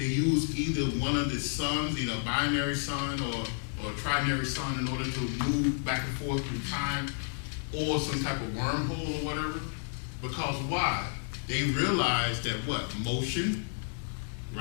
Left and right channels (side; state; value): right; silent; 57 dB below the other